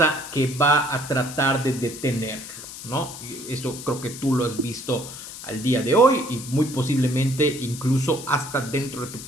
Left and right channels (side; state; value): left; noise; hiss, 12 dB below the sound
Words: que va a tratar de detenerlo, ¿no? Eso creo que tú lo has visto al día de hoy y muy posiblemente incluso hasta dentro de tu